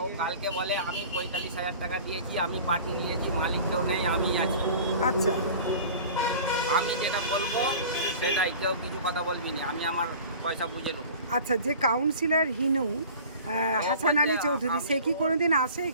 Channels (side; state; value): both; inverted; correlation -0.42